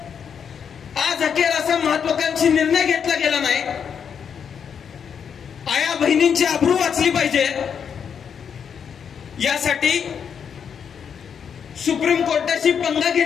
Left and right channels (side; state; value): right; quieter; 7.3 dB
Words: आज अखेर असा महत्वाकांक्षी निर्णय घेतला गेला नाही. आया बहिणींची अब्रू वाचली पाहिजे यासाठी सुप्रीम कोर्टाशी पंगा